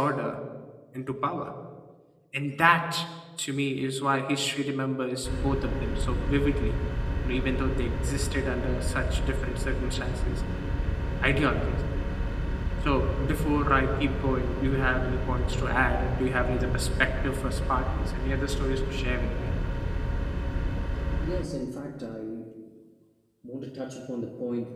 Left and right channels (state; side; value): identical; both; correlation 1.00